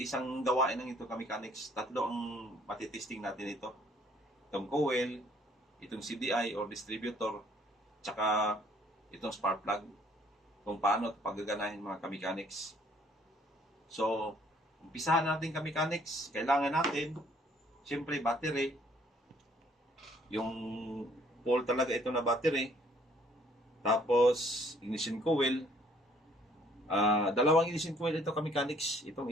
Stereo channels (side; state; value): both; normal; correlation 0.61